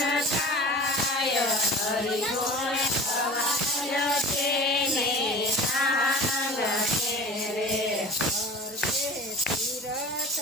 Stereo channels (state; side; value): normal; both; correlation 0.38